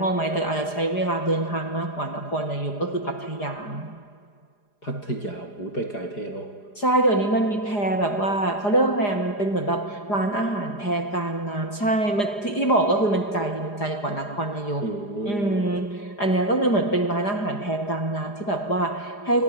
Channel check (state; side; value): late; right; 4.9 ms